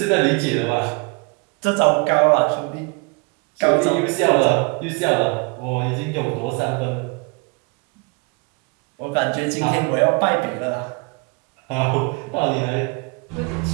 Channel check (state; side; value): quieter; left; 29.9 dB